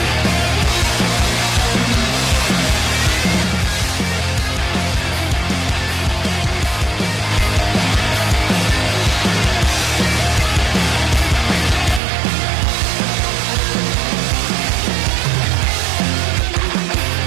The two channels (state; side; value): drops out; left; at 12.0 s